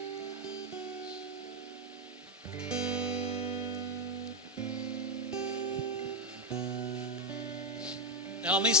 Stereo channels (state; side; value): normal; both; correlation 0.07